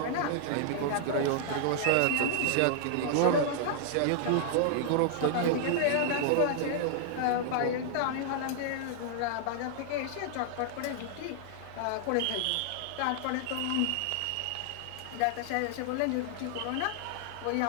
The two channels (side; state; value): both; different; correlation -0.01